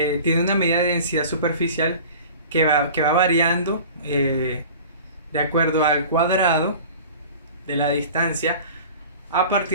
una medida de densidad superficial que va variando de acuerdo al cuadrado de la distancia a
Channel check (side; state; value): both; inverted; correlation -0.41